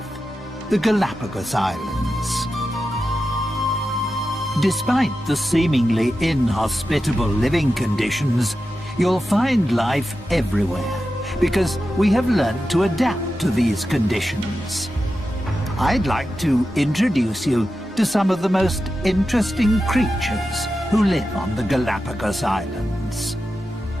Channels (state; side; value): normal; both; correlation 0.91